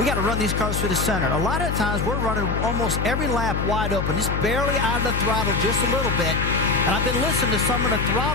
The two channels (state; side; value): noise; left; hum, 2 dB below the sound